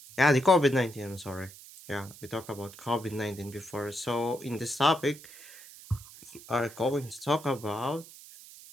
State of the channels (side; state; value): right; noise; hiss, 18 dB below the sound